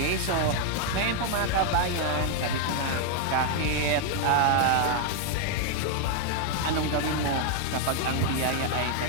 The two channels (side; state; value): both; different; correlation 0.00